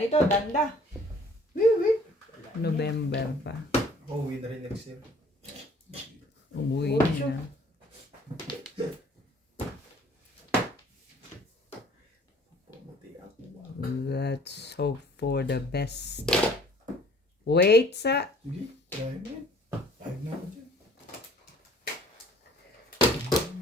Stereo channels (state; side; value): normal; both; correlation 0.55